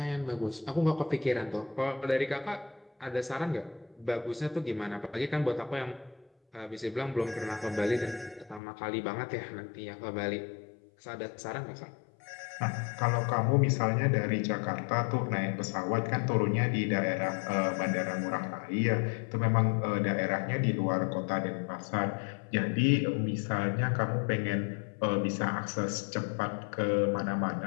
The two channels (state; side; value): drops out; right; at 8.6 s